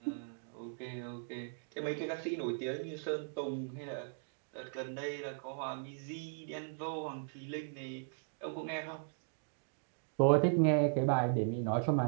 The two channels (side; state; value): left; silent; digital silence